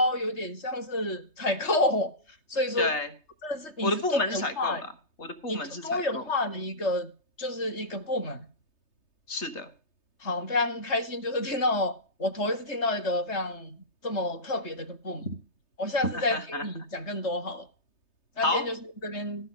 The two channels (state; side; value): late; right; 3.3 ms